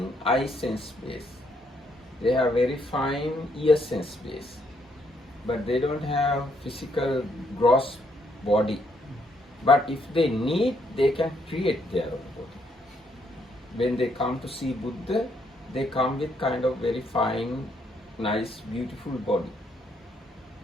eye sense space. They have very fine ear sense space. But they don't have physical gross body. But if they need, they can create their own body. When they come to see Buddha, they come with kind of very fine, nice, beautiful body.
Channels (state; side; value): normal; both; correlation 0.73